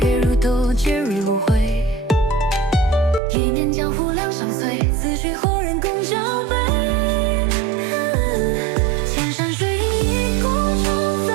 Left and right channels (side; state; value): left; drops out; at 3.2 s